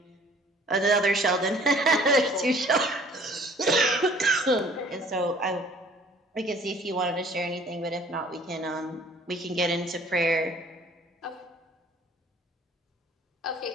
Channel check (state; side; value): normal; both; correlation 0.54